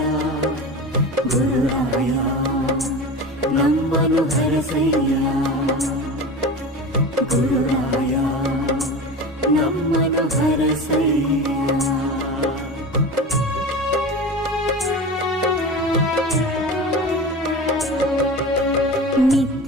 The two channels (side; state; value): both; normal; correlation 0.30